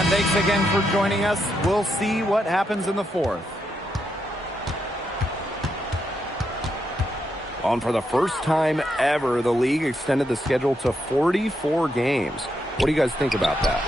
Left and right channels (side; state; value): both; normal; correlation 0.81